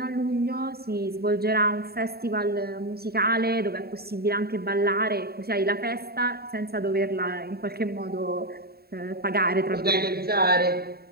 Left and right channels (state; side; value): late; left; 0.45 ms